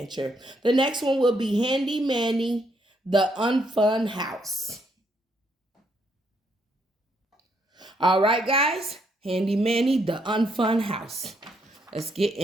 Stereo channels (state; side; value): normal; both; correlation 0.74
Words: The next one will be Handy Manny, The Unfun House. All right, guys, Handy Manny, The Unfun House. Let's get